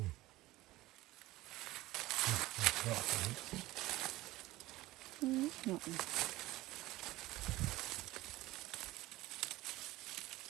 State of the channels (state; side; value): quieter; left; 17.9 dB